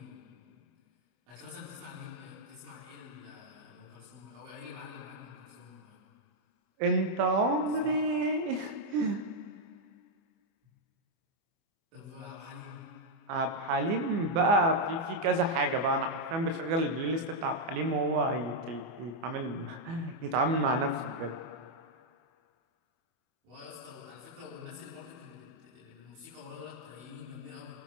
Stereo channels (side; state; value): left; late; 24 ms